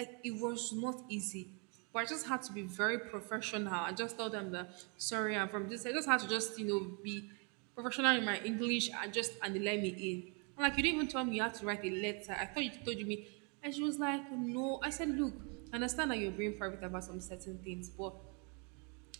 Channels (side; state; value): left; quieter; 35.2 dB